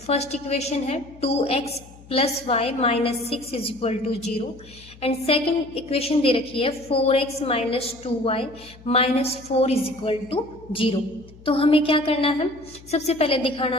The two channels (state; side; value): noise; left; hum, 22 dB below the sound